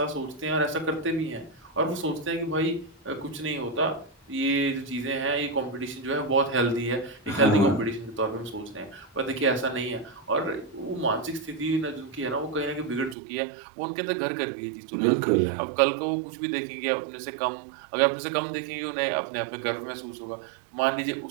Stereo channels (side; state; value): left; drops out; at 13.2 s